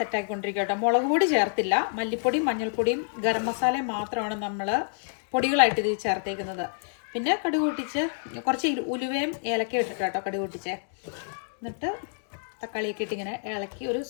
കേട്ടോ. മുളക് പൊടി ചേർത്തില്ല, മല്ലിപ്പൊടിയും മഞ്ഞൾപ്പൊടിയും ഗരം മസാലയും മാത്രമാണ് നമ്മൾ പൊടികളായിട്ട് ഇത് ചേർത്തേക്കുന്നത്. പിന്നെ കടുക് പൊട്ടിച്ച് കുറച്ച് ഉലുവയും ഏലക്കയും ഇട്ടിട്ട് കേട്ടോ കടുക് പൊട്ടിച്ചേ. എന്നിട്ട് തക്കാളിയൊക്കെ ഇട്ട് ഇങ്ങനെ ഇളക്കി ഒരു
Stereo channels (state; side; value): silent; right; digital silence